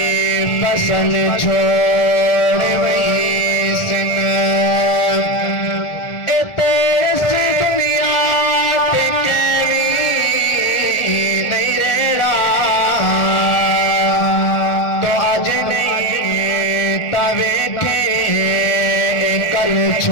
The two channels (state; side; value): late; right; 1.4 ms